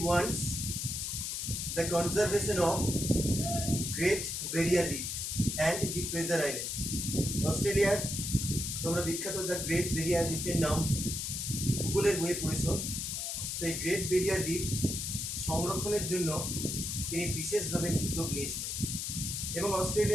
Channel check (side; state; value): left; noise; hiss, 3 dB below the sound